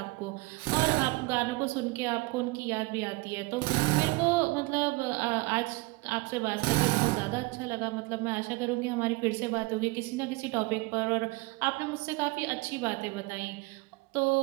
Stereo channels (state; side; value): quieter; left; 24.0 dB